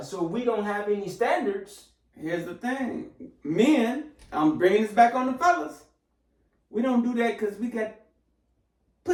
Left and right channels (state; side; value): identical; both; correlation 1.00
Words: So we don't have any standards. Here's the thing. Men, I'm bringing this back on the fellas. We don't do that because we got